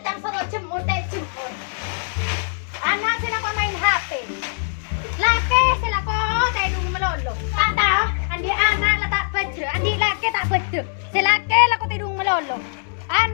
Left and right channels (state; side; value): silent; right; digital silence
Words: soro jemur jemput. Anak sila ko main HP. Laki sila ko tedung melolo. Tak tahu, andi anak la tak baca, andi laki tak baca. Silaki la ko tedung melolo.